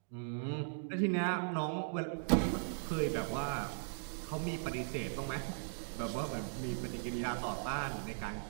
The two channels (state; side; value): silent; left; digital silence